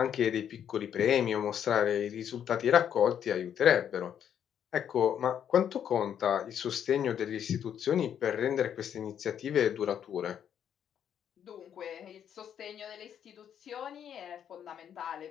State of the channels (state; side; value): quieter; right; 9.1 dB